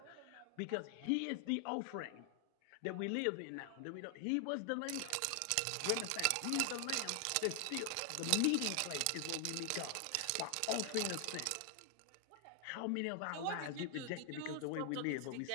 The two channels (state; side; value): different; both; correlation 0.00